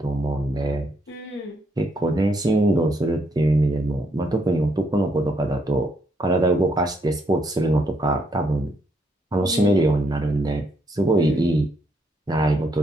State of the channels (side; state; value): both; normal; correlation 0.74